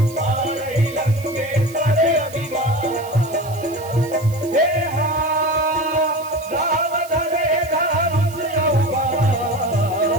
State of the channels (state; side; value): noise; right; hiss, 18 dB below the sound